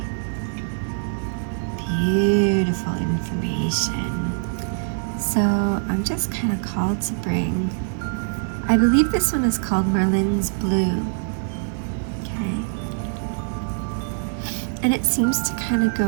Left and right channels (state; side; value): silent; left; 58 dB below the other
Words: beautiful information. So I'm just kind of called to bring, I believe this one is called Merlin's Blue. Okay. And it seems to kind of go